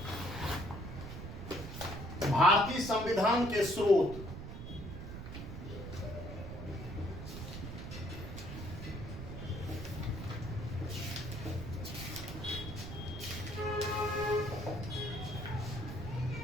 भारतीय संविधान के स्रोत।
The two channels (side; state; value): right; noise; rumble, 8 dB below the sound